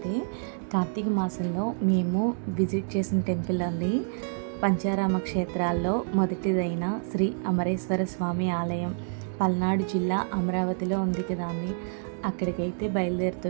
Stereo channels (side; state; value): left; silent; digital silence